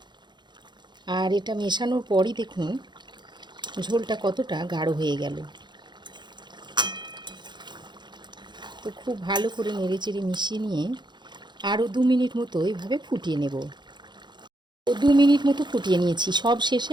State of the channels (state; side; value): late; left; 0.21 ms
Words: আর এটা মেশানোর পরই দেখুন ঝোলটা কতটা গাঢ় হয়ে গেল। তো খুব ভালো করে নেড়েচেড়ে মিশিয়ে নিয়ে আরও 2 মিনিট মতো এইভাবে ফুটিয়ে নেব। তো 2 মিনিট মতো ফুটিয়ে নিয়েছি। সব শেষে